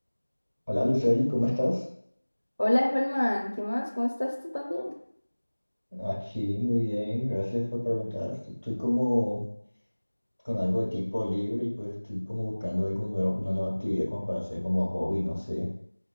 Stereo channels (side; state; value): both; inverted; correlation -1.00